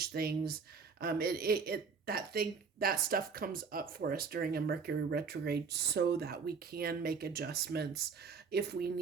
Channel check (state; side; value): quieter; left; 5.4 dB